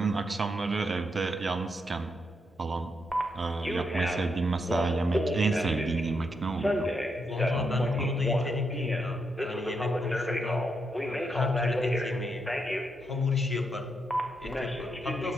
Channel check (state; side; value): normal; both; correlation 0.81